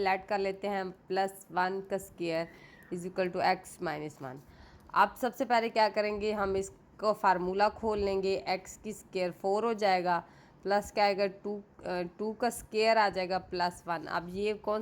ऐड कर लेते हैं, +1 का स्क्वायर = x - 1। अब सबसे पहले क्या करेंगे, हम इसको फार्मूला खोल लेंगे, x की स्क्वायर 4 हो जाएगा, प्लस क्या आएगा, 2 का स्क्वायर आ जाएगा +1। अब ये कौन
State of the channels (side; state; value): both; identical; correlation 1.00